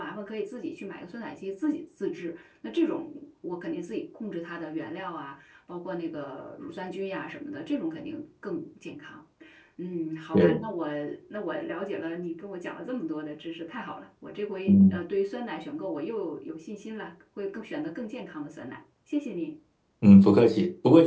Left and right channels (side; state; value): both; identical; correlation 1.00